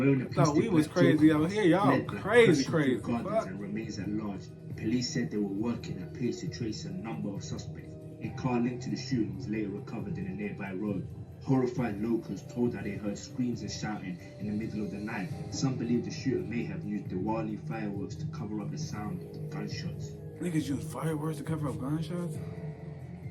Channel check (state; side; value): identical; both; correlation 1.00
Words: a plastic thought we was crazy out here. Y'all crazy. And remains at large. Police said they were working at pace to trace a number of suspects. A car linked to the shooting was later recovered in a nearby road. Horrified locals told that they heard screams and shouting in the middle of the night. Some believe the shooter may have used Diwali fireworks to cover up the sound of gunshots. Niggas use fireworks to cover up gunshots?